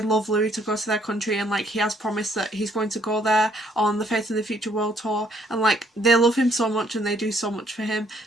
love Louis to go to their country, and like he has promised that he's going to go there on the Faith in the Future World Tour, and like they love him so much and they do so much for him,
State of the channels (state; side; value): normal; both; correlation 0.66